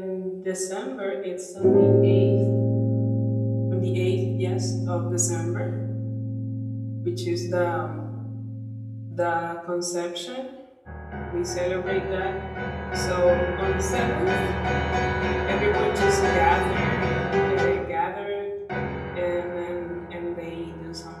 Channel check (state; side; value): identical; both; correlation 1.00